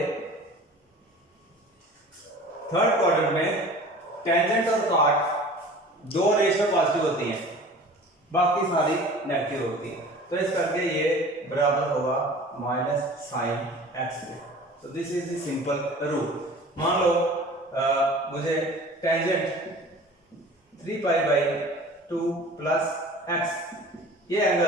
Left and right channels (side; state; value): both; normal; correlation 0.43